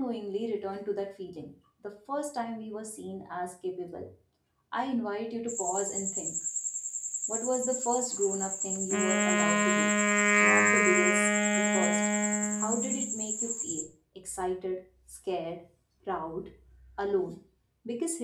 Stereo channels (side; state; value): both; identical; correlation 1.00